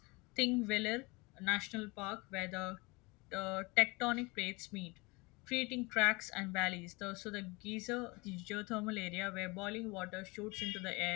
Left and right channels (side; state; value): right; quieter; 25.8 dB